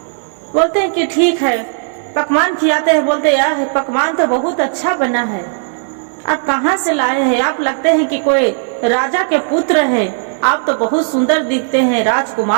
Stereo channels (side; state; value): left; silent; digital silence